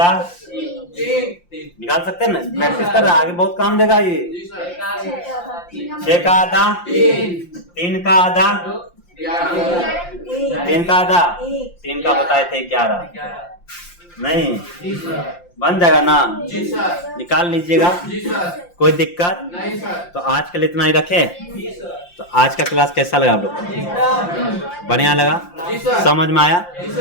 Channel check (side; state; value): right; late; 5.7 ms